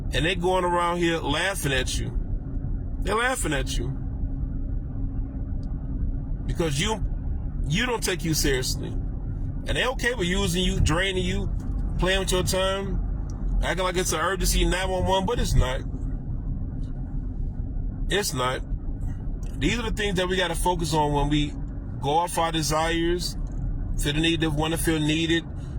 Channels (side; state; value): both; identical; correlation 1.00